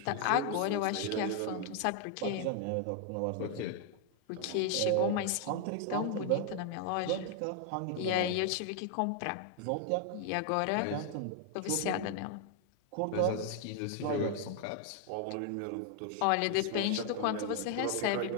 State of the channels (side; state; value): both; different; correlation 0.00